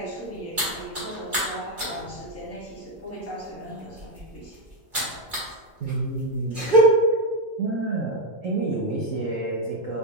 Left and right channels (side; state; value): left; late; 2.3 ms